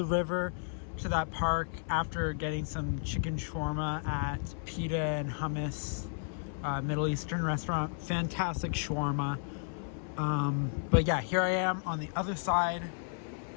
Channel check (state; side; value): silent; right; 56 dB below the other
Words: river to that park after getting some chicken shawarma at Pita and Hummus, Middle Eastern restaurant. Fantastic shawarma. But yeah, here I am on the other side,